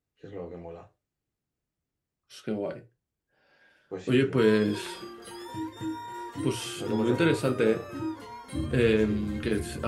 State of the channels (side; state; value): both; identical; correlation 1.00